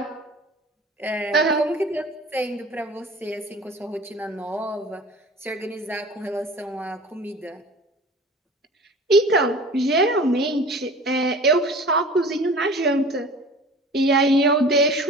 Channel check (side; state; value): both; normal; correlation 0.41